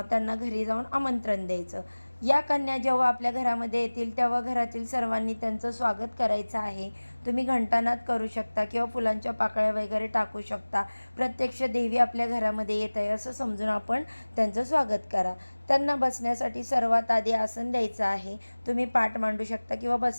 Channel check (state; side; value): inverted; both; correlation -1.00